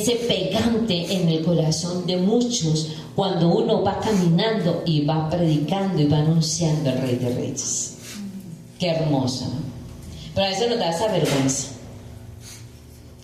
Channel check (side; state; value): both; identical; correlation 1.00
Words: pegante en el corazón de muchos cuando uno va caminando y va predicando y va anunciando al Rey de Reyes. Qué hermoso, ¿no? Pero a veces nos da esa vergüenza.